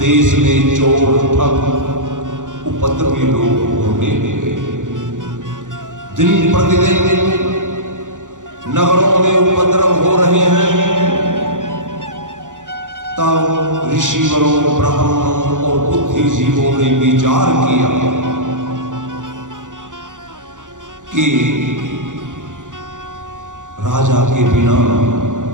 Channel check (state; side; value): late; left; 0.87 ms